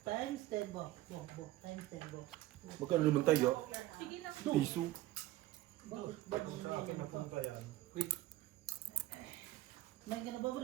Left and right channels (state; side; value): quieter; left; 15.9 dB